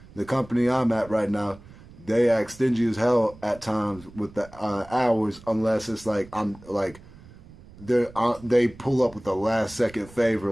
the company I'm at right now, they act stingy as hell at times with the hours, unless it's like they pull up with a last second favor,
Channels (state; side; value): noise; right; rumble, 21 dB below the sound